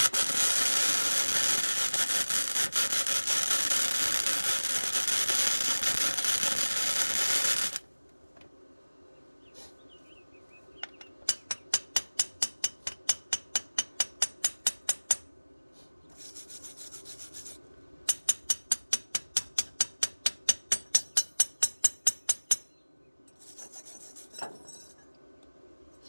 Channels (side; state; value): both; inverted; correlation -1.00